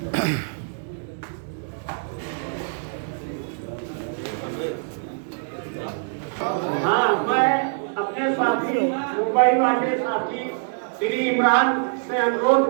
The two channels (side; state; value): left; silent; digital silence